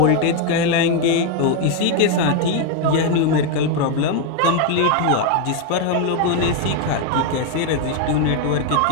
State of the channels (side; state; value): both; different; correlation 0.01